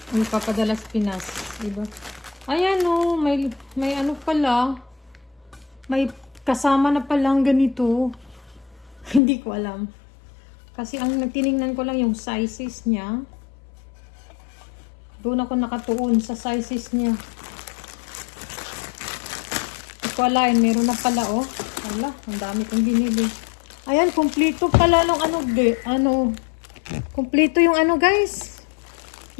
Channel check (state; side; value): drops out; right; at 9.2 s